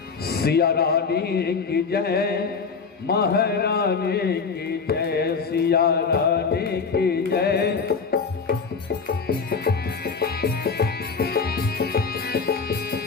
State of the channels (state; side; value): quieter; right; 5.2 dB